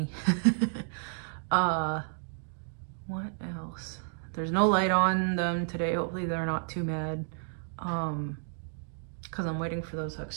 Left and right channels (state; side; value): silent; left; digital silence